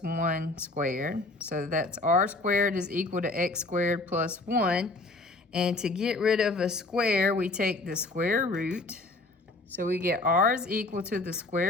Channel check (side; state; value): right; quieter; 3.1 dB